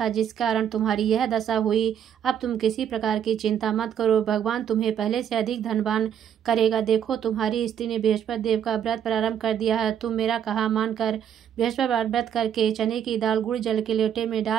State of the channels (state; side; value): quieter; left; 9.1 dB